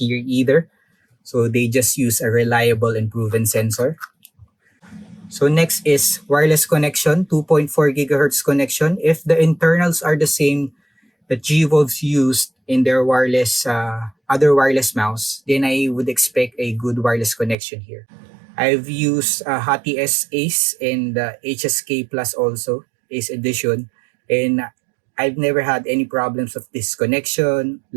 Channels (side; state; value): left; drops out; at 17.6 s